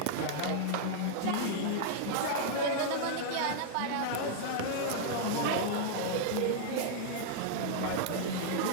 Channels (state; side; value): different; both; correlation -0.01